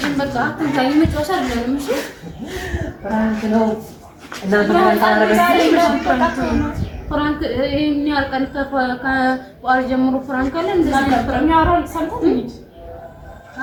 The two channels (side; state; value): both; identical; correlation 1.00